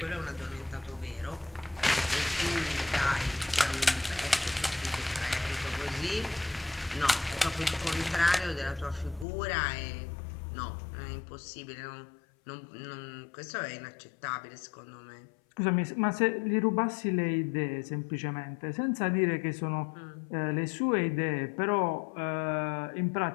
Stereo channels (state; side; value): drops out; right; at 9.2 s